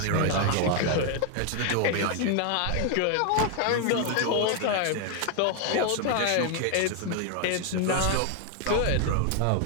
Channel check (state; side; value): different; both; correlation 0.00